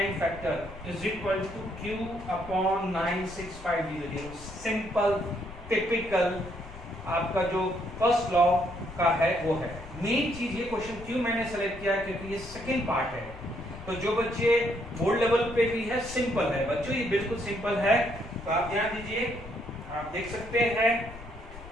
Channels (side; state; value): left; noise; rumble, 15 dB below the sound